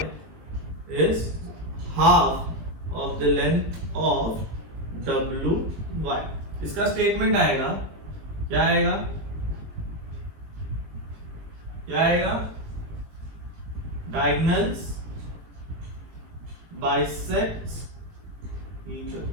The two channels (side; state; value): left; late; 20 ms